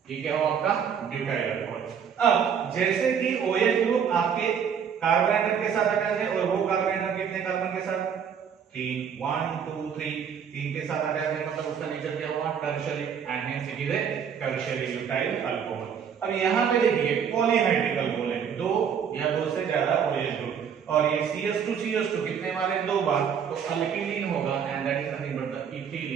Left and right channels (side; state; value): left; quieter; 7.5 dB